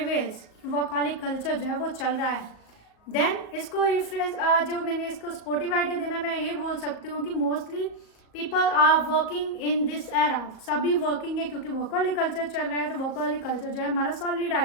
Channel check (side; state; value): right; late; 38 ms